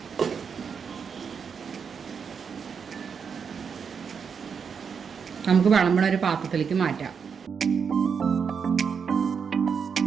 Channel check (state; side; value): quieter; left; 6.4 dB